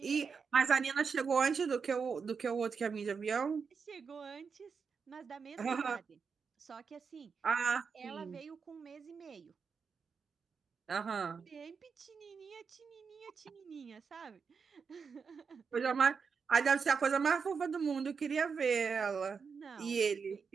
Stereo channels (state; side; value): quieter; left; 5.7 dB